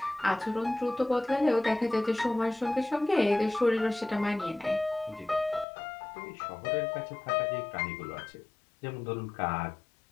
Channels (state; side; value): drops out; right; at 5.7 s